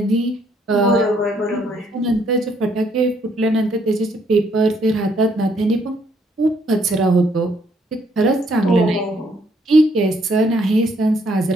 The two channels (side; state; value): both; normal; correlation 0.69